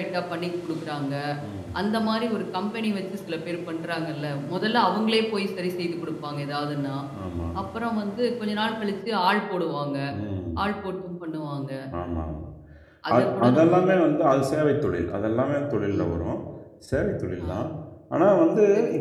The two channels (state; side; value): identical; both; correlation 1.00